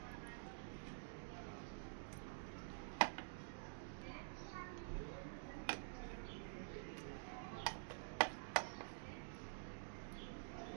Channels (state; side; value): silent; left; digital silence